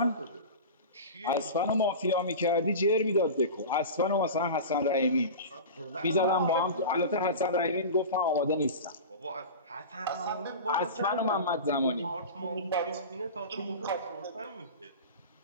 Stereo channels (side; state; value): both; inverted; correlation -0.30